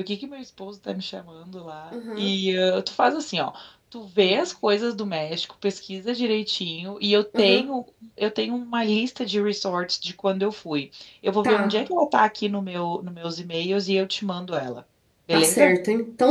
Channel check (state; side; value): identical; both; correlation 1.00